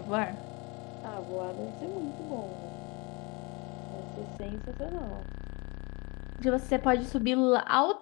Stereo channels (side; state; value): right; quieter; 28.4 dB